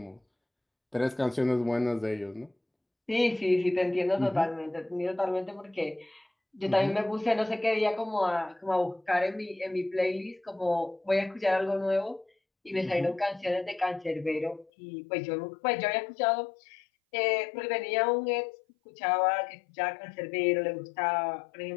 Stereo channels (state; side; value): drops out; right; at 14.7 s